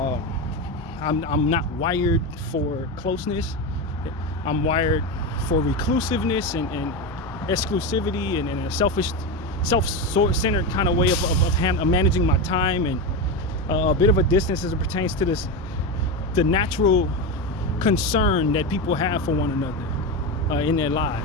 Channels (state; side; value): normal; both; correlation 0.16